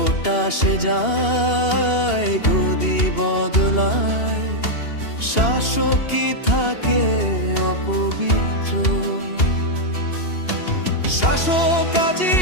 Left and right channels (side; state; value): right; late; 2.8 ms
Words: আসে যায়, গদি বদলায়, শাসকই থাকে অপবিত্র। শাসক আজি